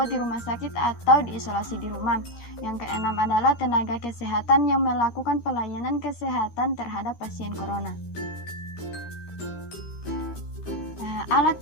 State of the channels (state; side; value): late; right; 13 ms